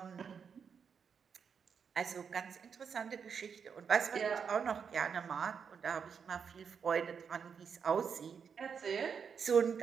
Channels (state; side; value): quieter; left; 6.6 dB